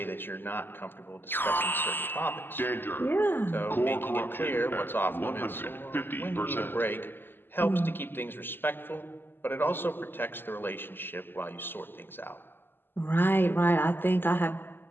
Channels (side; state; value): right; late; 0.096 ms